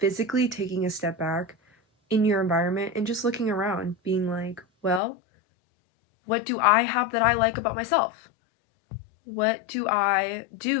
taking a step back in your environment and just looking around, being like, well, what do I have that I like about myself? What do I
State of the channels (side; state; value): right; drops out; at 5.0 s